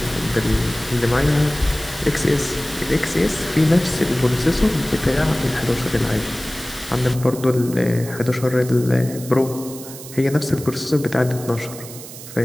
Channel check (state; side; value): noise; right; hiss, 14 dB below the sound